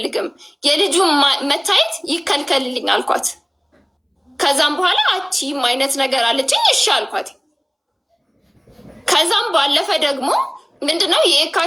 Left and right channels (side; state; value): both; identical; correlation 1.00